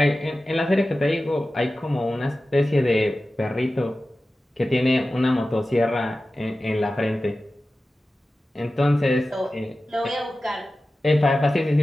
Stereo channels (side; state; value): both; normal; correlation 0.95